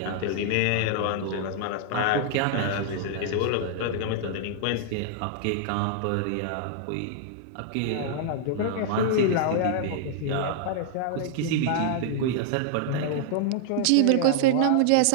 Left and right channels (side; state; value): both; different; correlation -0.01